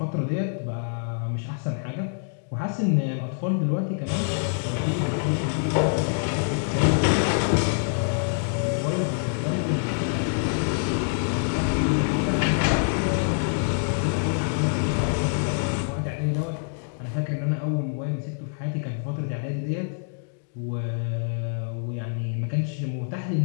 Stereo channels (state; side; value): silent; right; digital silence